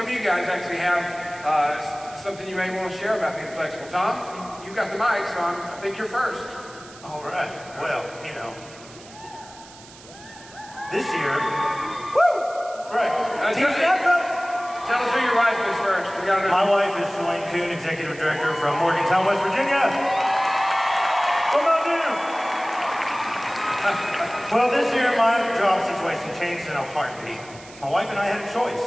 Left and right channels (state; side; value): noise; right; hiss, 20 dB below the sound